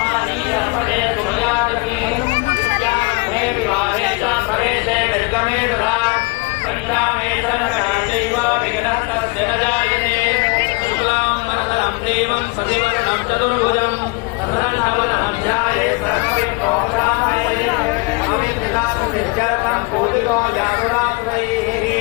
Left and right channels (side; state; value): right; quieter; 28.1 dB